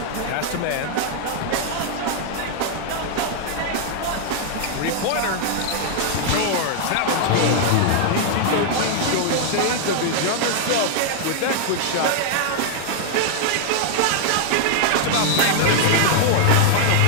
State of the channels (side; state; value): both; different; correlation 0.00